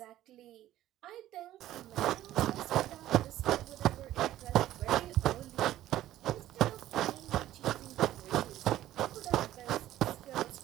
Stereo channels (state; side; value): quieter; left; 13.7 dB